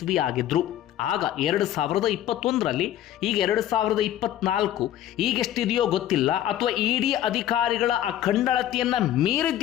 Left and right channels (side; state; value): right; quieter; 12.1 dB